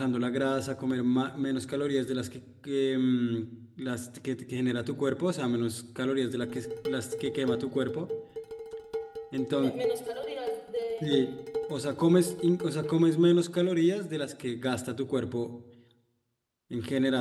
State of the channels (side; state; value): both; identical; correlation 1.00